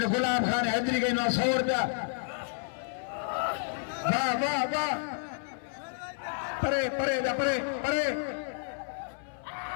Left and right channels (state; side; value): silent; right; 57 dB below the other